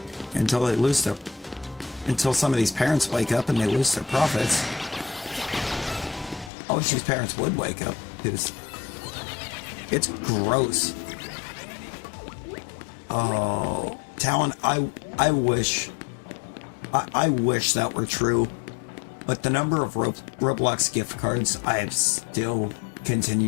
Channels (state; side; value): drops out; right; at 6.5 s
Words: Until some of these parents wake up and they lose their profits. I wish these parents would wake up, because it's gross. Oh, Talon, I wish that were true. But the number of Roblox gift cards I have still